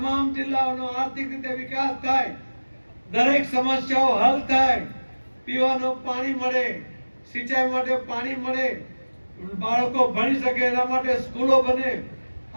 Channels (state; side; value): inverted; both; correlation -1.00